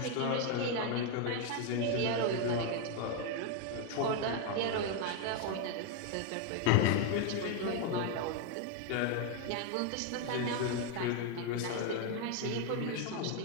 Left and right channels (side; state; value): both; different; correlation 0.01